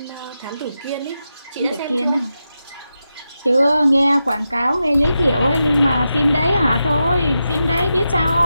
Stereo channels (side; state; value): both; inverted; correlation -0.89